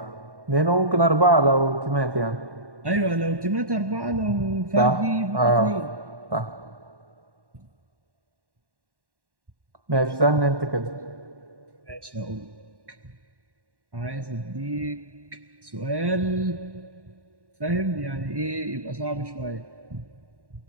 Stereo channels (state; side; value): late; left; 1.1 ms